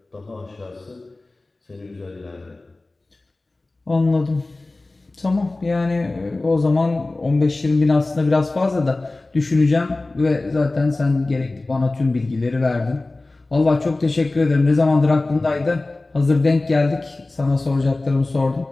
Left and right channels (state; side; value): quieter; right; 3.1 dB